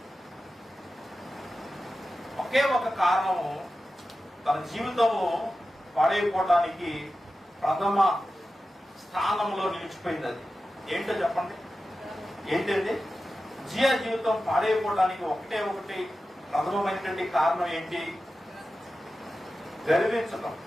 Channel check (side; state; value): both; normal; correlation 0.93